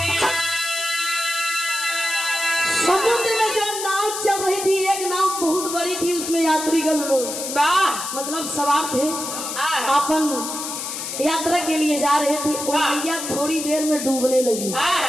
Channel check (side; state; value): left; noise; hiss, 6 dB below the sound